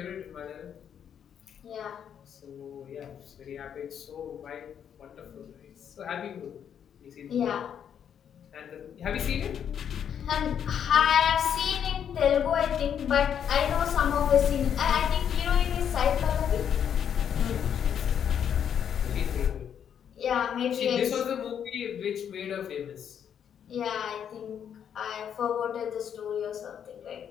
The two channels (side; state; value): right; quieter; 8.6 dB